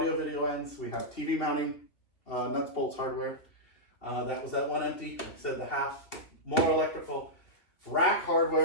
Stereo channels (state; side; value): late; right; 2.8 ms